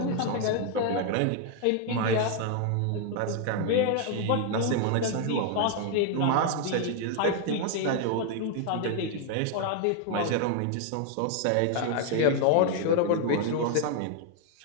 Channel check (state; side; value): different; both; correlation 0.00